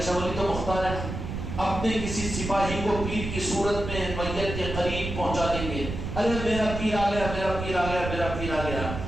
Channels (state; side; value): noise; right; rumble, 6 dB below the sound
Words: شاولی تو مختار ہے، اپنے کسی سپاہی کو پیر کی صورت میں میت کے قریب پہنچا دیں گے. ارے میرا پیر آ گیا، میرا پیر آ گیا، میرا پیر آ گیا.